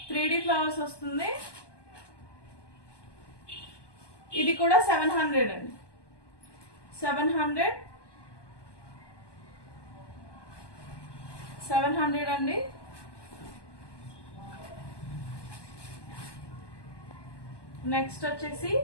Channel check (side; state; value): right; late; 1.2 ms